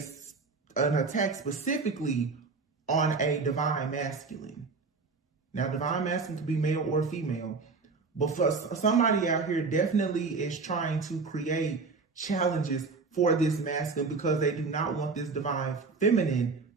attack specifically on a divine masculine. Now, divine masculine could be male or female, but for somebody out here definitely is trying to create challenges for this masculine because they do not want this divine feminine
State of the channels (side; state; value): left; quieter; 4.4 dB